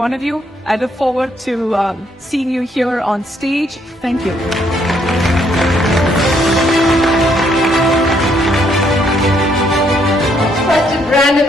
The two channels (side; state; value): both; normal; correlation 0.71